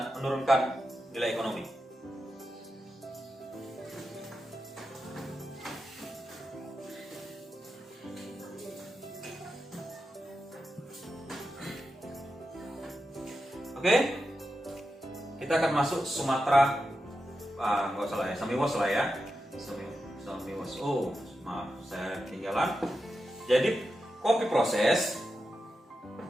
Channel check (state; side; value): normal; both; correlation 0.89